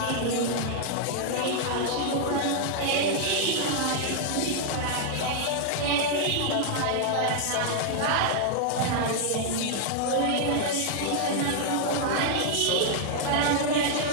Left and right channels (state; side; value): different; both; correlation 0.00